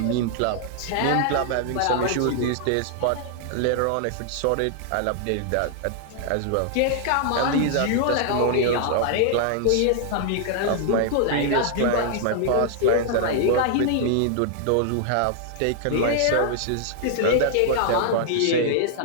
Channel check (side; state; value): both; different; correlation -0.01